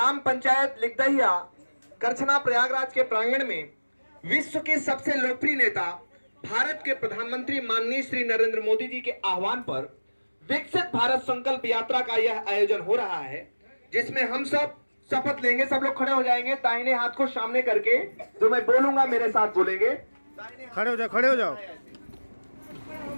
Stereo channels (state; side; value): inverted; both; correlation -1.00